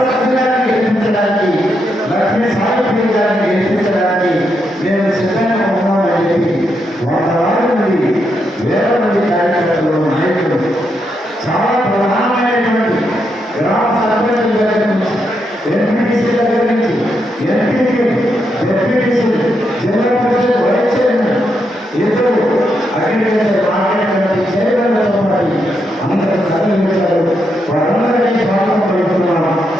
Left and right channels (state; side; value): normal; both; correlation 0.81